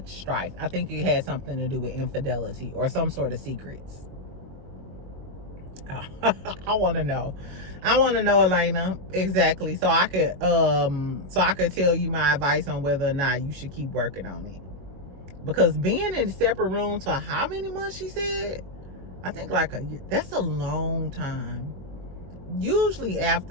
strife. I think it had something to do with infidelity or some sort of secrets. I want to know. I want to know, Elena, exactly, so I could tell you my advice on whether or not you should keep working on it. Because being in a separate room for how many months, she said? I think like a year. That's a long time. Usually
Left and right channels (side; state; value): left; late; 22 ms